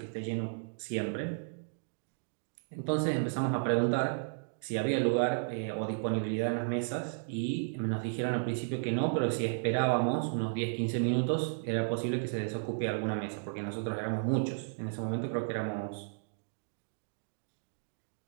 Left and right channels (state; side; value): silent; left; digital silence